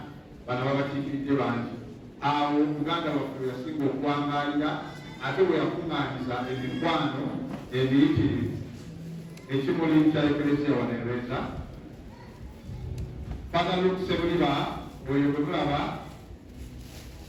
bano babakiikiridde bangi. Awo Buganda baffe yasinga okwangalira ate bwe yakuŋŋaanyiza emikwano emiyitirivu ekimuli kya Ecclesia wanereeza bagala okusebuliba oyo bwe mulaba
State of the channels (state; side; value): identical; both; correlation 1.00